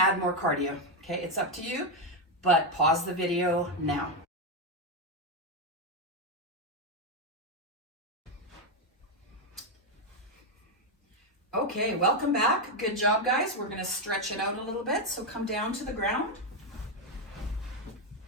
more cardio, okay? It's up to you, but pause the video now. Okay, welcome back. Good job, guys. We're gonna stretch it out a little bit, so come down to the ground.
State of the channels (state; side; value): normal; both; correlation 0.05